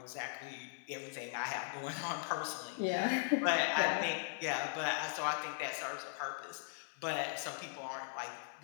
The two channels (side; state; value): right; silent; 52 dB below the other